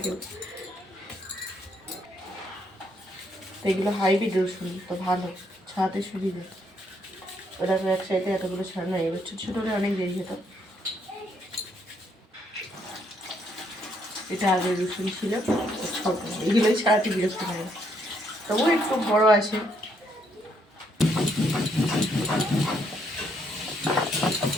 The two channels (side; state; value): both; normal; correlation 0.72